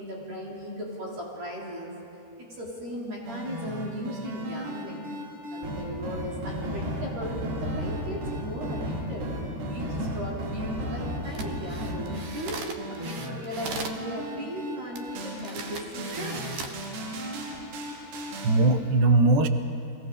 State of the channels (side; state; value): left; late; 13 ms